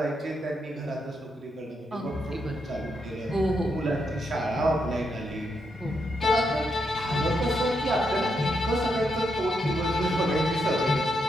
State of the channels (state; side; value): normal; both; correlation 0.81